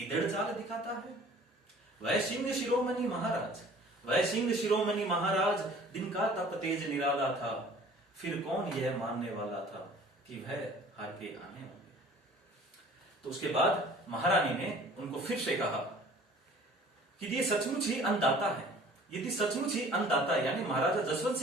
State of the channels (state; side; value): normal; both; correlation 0.50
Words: चाल दिखाता है। वह सिंह शिरोमणि महाराज, वह सिंह शिरोमणि महाराज, दिन का तप तेज निराला था, फिर कौन यह मानने वाला था कि वह हार के आने होंगे। तो उसके बाद महारानी ने उनको फिर से कहा कि ये सचमुच ही अन्नदाता है, यदि सचमुच ही अन्नदाता यानी महाराजा जसवंत